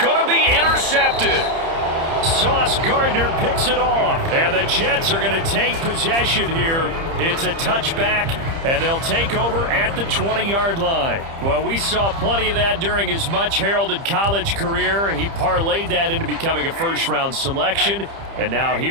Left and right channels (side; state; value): left; late; 30 ms